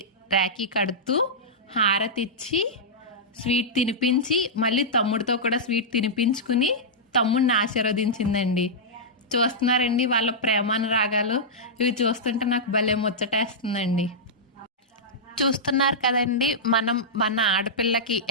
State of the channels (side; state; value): both; normal; correlation -0.12